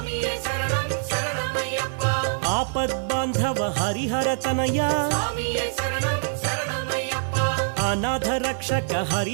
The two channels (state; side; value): silent; left; 62 dB below the other